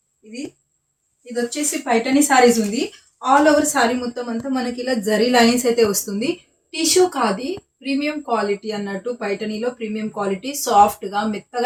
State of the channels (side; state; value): both; identical; correlation 1.00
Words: ఇది ఇది వచ్చేసి పైటనీ సారీస్ ఉంది. ఆల్ ఓవర్ సారీ మొత్తం అంతా మనకి ఇలా జరీ లైన్స్ అయితే వస్తుంది. టిష్యూ కాది, ప్రీమియం క్వాలిటీ అన్నట్టు. పైటనీలో ప్రీమియం క్వాలిటీ, సాఫ్ట్గా